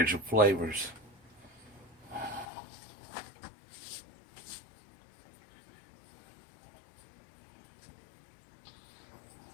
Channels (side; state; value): right; drops out; at 2.5 s